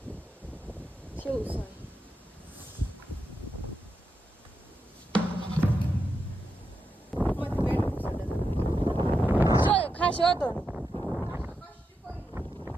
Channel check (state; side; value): normal; both; correlation 0.86